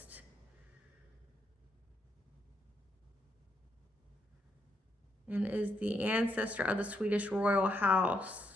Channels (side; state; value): both; normal; correlation 0.77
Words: And is the ancestor of the Swedish royal